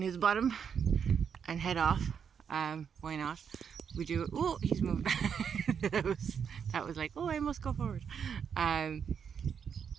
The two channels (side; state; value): left; quieter; 7.2 dB